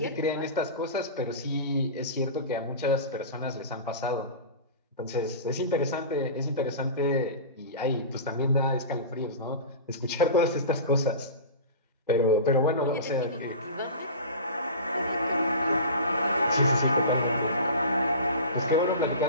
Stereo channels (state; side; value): inverted; both; correlation -0.32